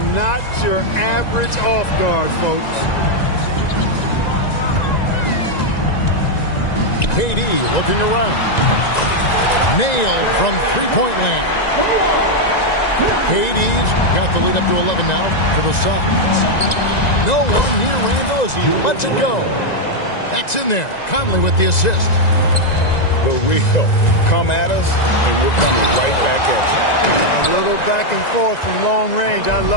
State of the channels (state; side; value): late; right; 1.9 ms